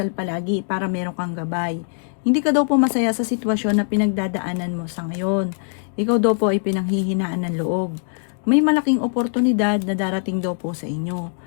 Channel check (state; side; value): silent; right; digital silence